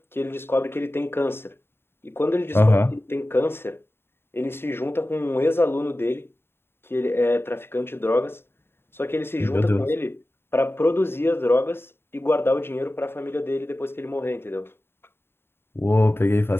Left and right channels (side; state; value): right; late; 0.11 ms